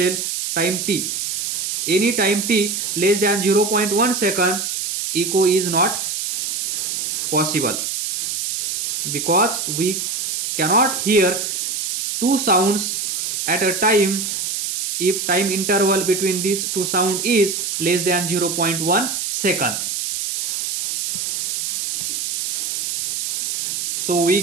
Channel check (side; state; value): right; noise; hiss, 2 dB below the sound